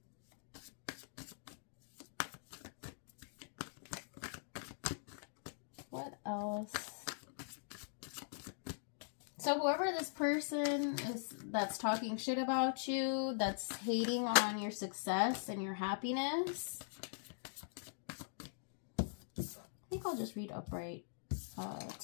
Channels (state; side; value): silent; right; digital silence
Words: what else? So whoever this person is that's talking shit about you, that's hating on your success and your happiness, I think I'll just read upright